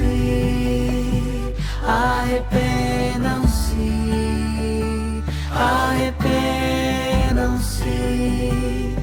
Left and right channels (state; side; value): identical; both; correlation 1.00